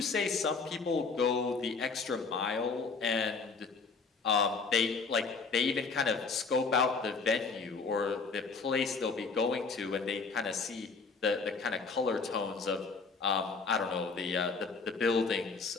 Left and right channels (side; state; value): right; quieter; 4.6 dB